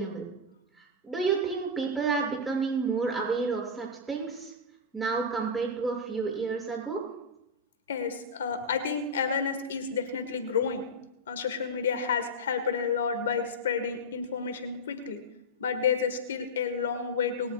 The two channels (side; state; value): both; normal; correlation -0.08